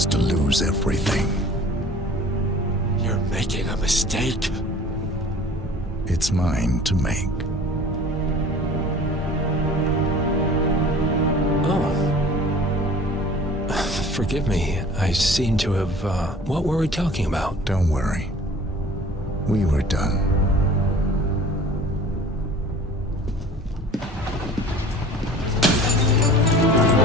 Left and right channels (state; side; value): normal; both; correlation 0.46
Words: to lose everything. You're making a mistake. It's mine to make. Oh. Forgive me. I seem to have, what were we talking about? Don't worry. We were done.